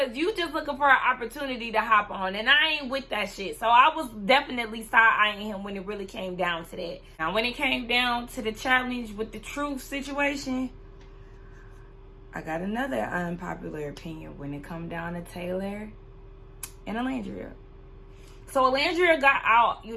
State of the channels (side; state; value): both; identical; correlation 1.00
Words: you just looking for an opportunity to hop on, and I ain't with that shit. So I was definitely side-eyeing him when it really came down to that. Now, when it came down to the challenge with the truth situation, I got another unpopular opinion when it come down to Taylor and Alandria. So Alandria got out,